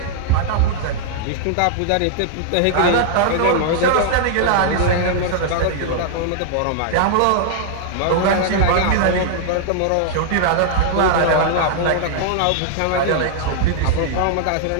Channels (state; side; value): different; both; correlation -0.01